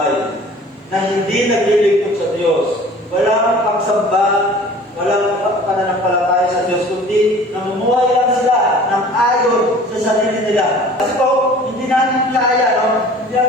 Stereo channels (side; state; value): both; normal; correlation 0.46